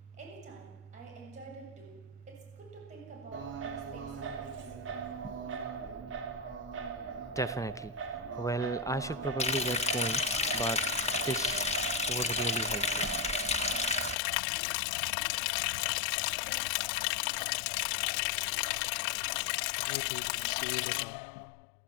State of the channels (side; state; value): right; drops out; at 14.2 s